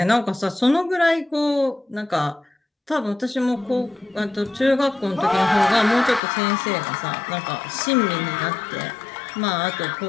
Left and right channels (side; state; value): right; drops out; at 6.2 s